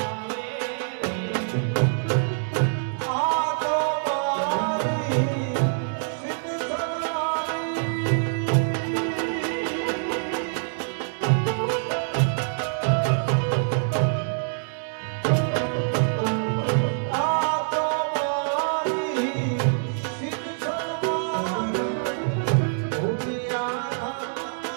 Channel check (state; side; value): silent; left; 61 dB below the other